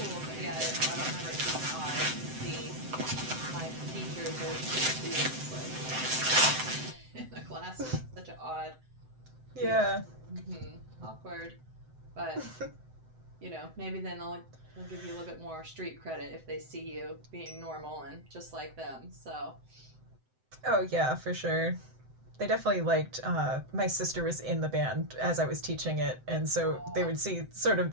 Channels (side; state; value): left; late; 7.8 ms